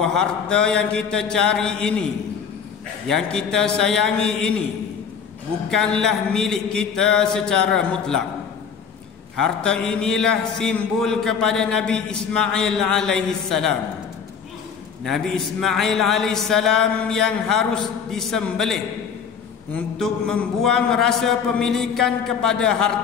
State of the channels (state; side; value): quieter; right; 6.8 dB